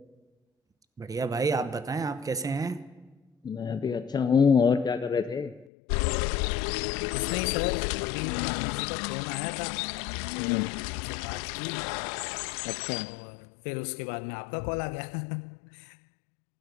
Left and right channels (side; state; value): right; drops out; at 5.7 s